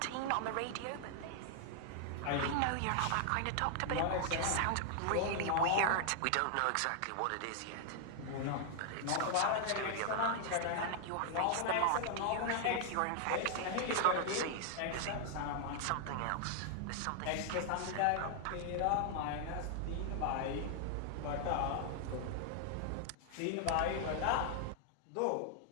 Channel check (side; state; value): both; different; correlation 0.00